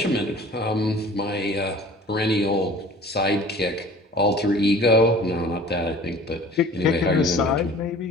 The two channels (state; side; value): normal; both; correlation 0.46